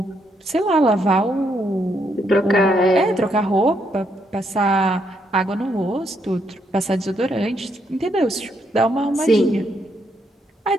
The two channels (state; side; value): normal; both; correlation 0.75